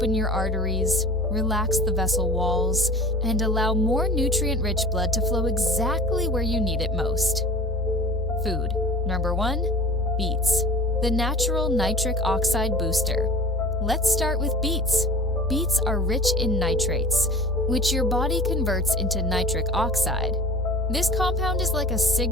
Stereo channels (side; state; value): both; normal; correlation 0.40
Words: your arteries, relax the vessel walls, and allow more nutrient-rich blood to flow exactly where you need it most. Food. Number 1, beets, the natural nitric oxide booster. Let's start with beets. Beets are rich in nitrates, which your body converts into nitric oxide. This compound is like a